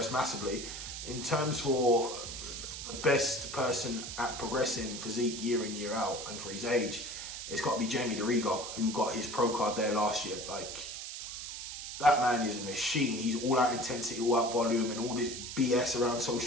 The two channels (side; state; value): right; noise; hiss, 8 dB below the sound